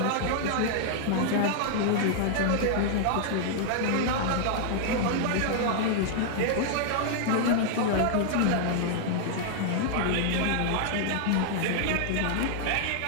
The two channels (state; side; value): different; both; correlation -0.01